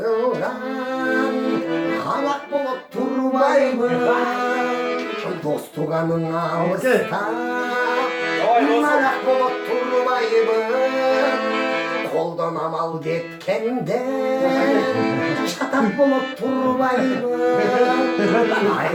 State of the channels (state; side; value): identical; both; correlation 1.00